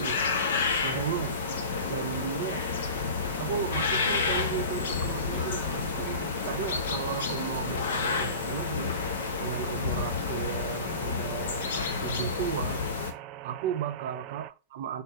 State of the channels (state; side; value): inverted; both; correlation -0.35